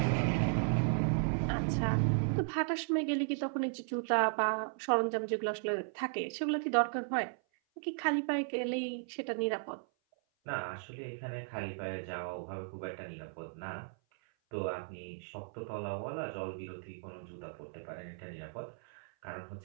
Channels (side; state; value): left; silent; 54 dB below the other